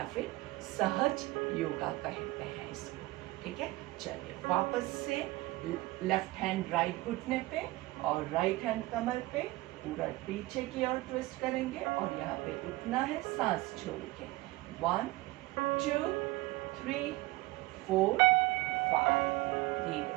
फिर सहज योगा कहते हैं इसको, ठीक है। चलिए वापस से लेफ्ट हैंड राइट घुटने पे और राइट हैंड कमर पे पूरा पीछे की ओर ट्विस्ट करेंगे और यहाँ पे उठना है सांस छोड़ के। 1 2 3 4 5।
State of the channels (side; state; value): left; quieter; 20.2 dB